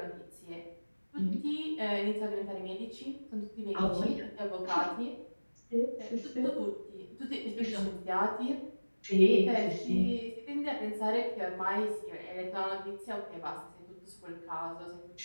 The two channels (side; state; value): both; inverted; correlation -1.00